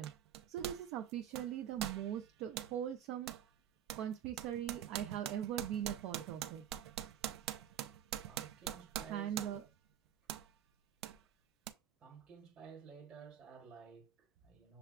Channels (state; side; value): quieter; left; 10.2 dB